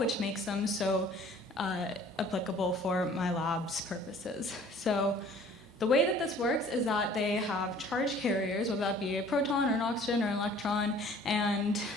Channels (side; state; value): both; normal; correlation 0.52